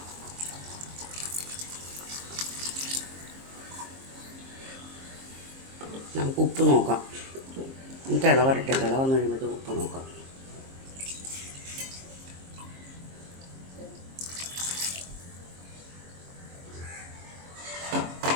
നമുക്ക് ഉപ്പ് നോക്കാം. തിള വരട്ടെ, തിള വന്നു കഴിയുമ്പോഴത്തേക്ക് ഉപ്പ് നോക്കാം.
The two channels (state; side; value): late; left; 23 ms